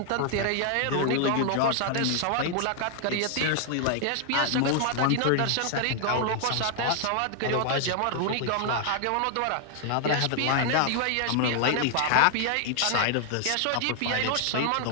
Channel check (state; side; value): different; both; correlation 0.00